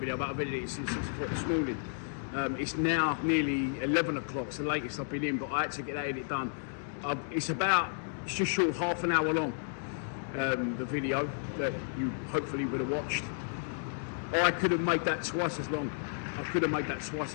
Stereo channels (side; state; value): right; silent; digital silence